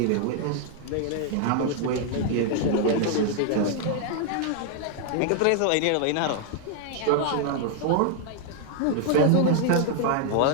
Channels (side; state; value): both; different; correlation 0.00